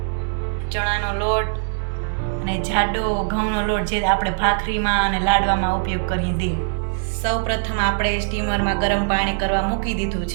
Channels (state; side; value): silent; left; digital silence